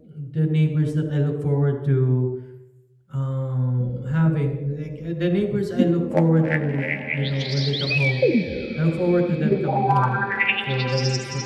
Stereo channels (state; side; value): identical; both; correlation 1.00